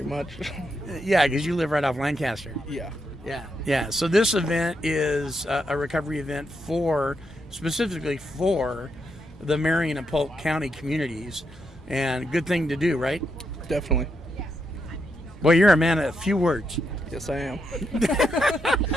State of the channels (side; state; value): both; normal; correlation 0.81